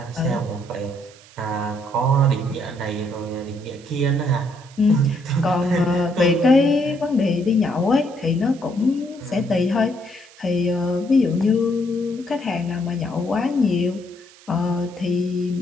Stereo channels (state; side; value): noise; right; hiss, 24 dB below the sound